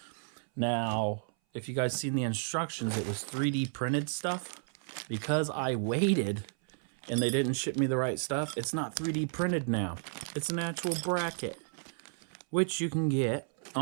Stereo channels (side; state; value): left; silent; 56 dB below the other